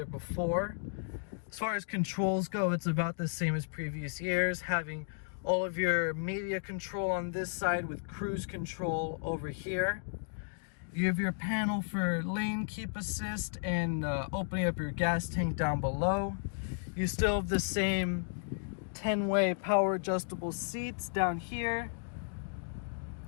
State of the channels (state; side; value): silent; right; digital silence